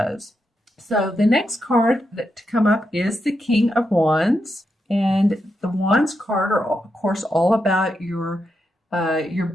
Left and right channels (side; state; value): both; normal; correlation 0.85